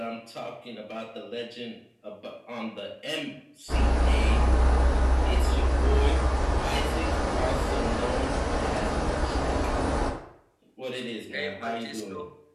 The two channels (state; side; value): identical; both; correlation 1.00